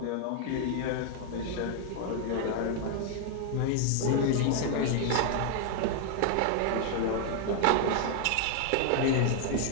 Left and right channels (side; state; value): both; different; correlation 0.00